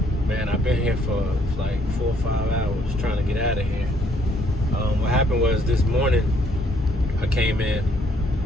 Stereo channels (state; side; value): normal; both; correlation 0.67